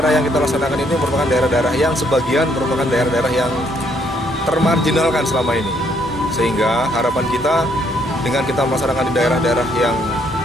yang kita laksanakan ini merupakan daerah-daerah yang sebagian merupakan daerah-daerah yang termarginalkan selama ini. Sehingga harapan kita dengan kita melaksanakan di daerah-daerah yang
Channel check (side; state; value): both; normal; correlation 0.69